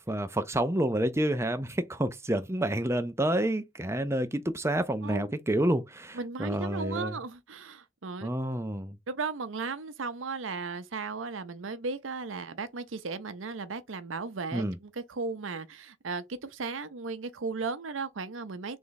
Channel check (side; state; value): both; normal; correlation 0.61